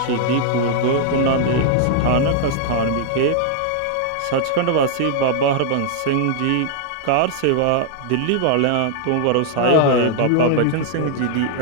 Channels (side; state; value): both; different; correlation 0.00